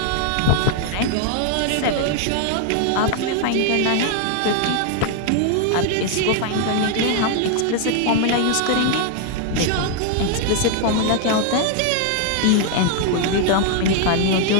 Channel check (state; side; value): different; both; correlation 0.00